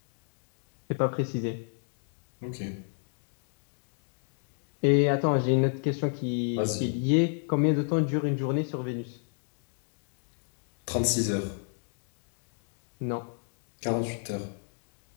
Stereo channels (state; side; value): silent; right; 57 dB below the other